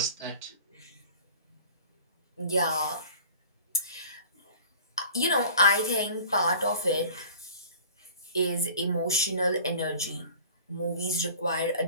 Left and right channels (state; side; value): inverted; both; correlation -0.44